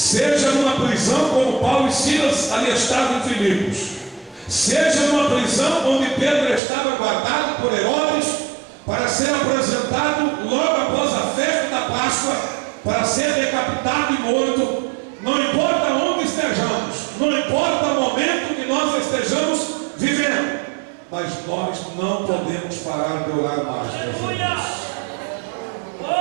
numa prisão como Paulo e Silas ali estavam em Filipos, seja numa prisão onde Pedro estava guardado por Herodes para ser apresentado logo após a festa da Páscoa, para ser decapitado e morto. Não importa onde estejamos, não importa o momento que nós estejamos vivendo, mas nós não podemos parar de orar mais, meus irmãos.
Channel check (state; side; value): drops out; left; at 6.6 s